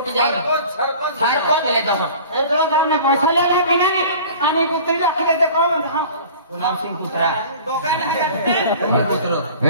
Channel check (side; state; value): both; inverted; correlation -0.43